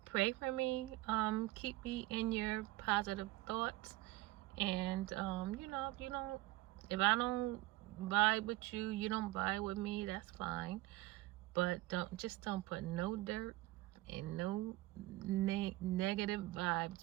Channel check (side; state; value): left; quieter; 18.7 dB